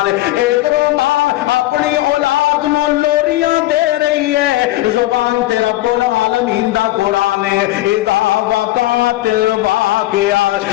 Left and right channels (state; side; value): quieter; right; 16.6 dB